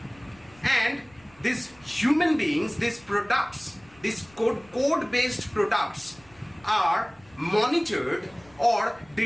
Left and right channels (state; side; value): noise; left; rumble, 28 dB below the sound